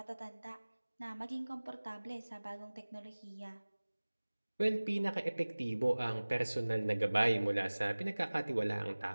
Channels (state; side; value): inverted; both; correlation -1.00